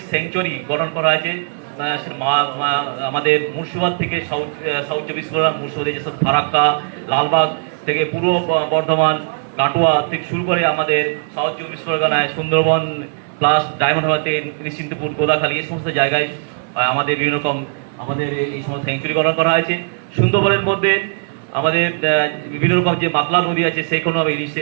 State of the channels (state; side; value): silent; left; digital silence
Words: স্যাংচুয়ারি গঠন করা হয়েছে। আমাদের মুর্শিদাবাদ থেকে সাউথ 24 পরগনা, মুর্শিদাবাদে যেসব ফারাক্কা, লালবাগ থেকে পূর্ব বর্ধমান, কাটোয়া থেকে শুরু করে আমাদের সাউথ 24 পরগনায় সুন্দরবন প্লাস ডায়মন্ড হারবারতে নিশ্চিন্তপুর, গোদাখালী, এই সমস্ত জায়গায় আমাদের বিভিন্ন রকম আমাদের এই সমস্ত স্যাংচুরি গঠন করা হয়েছে। সুন্দরবনের মধ্যে আমাদের বিভিন্ন রকম যে মাতলা নদী আছে, সেই কোনো